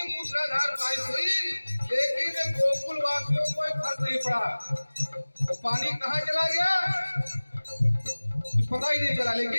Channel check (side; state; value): both; inverted; correlation -1.00